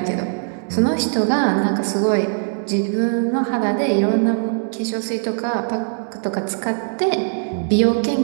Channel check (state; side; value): silent; left; digital silence